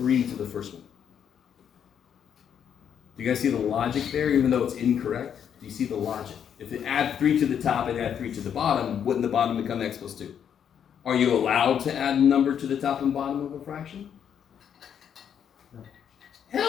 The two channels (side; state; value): right; quieter; 8.5 dB